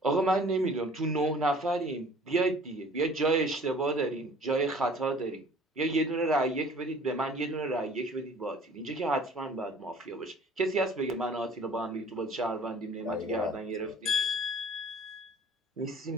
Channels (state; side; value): normal; both; correlation 0.50